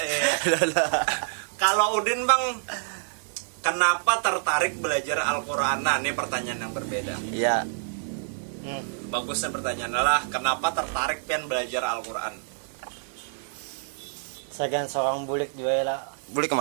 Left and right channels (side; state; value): left; silent; digital silence